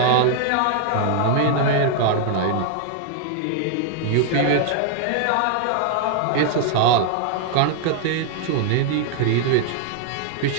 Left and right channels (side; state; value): both; different; correlation 0.00